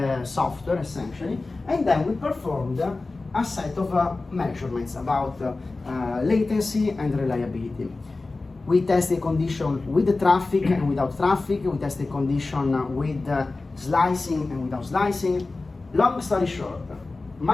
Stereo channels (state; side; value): quieter; right; 3.5 dB